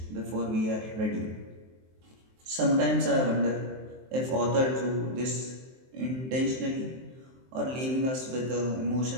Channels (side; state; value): left; late; 23 ms